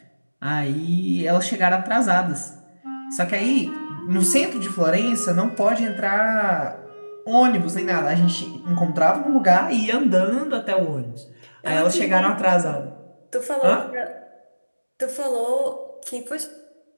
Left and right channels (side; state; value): both; inverted; correlation -1.00